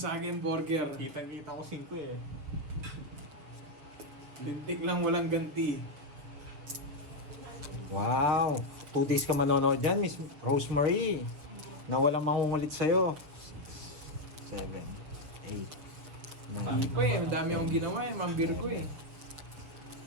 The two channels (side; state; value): left; late; 7.0 ms